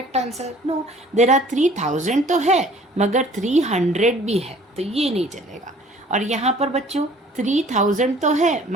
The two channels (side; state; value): both; normal; correlation 0.52